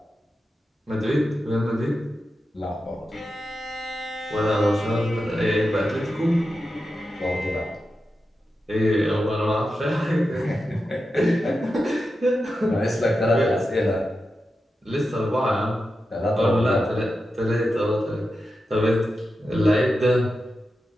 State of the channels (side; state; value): both; normal; correlation 0.90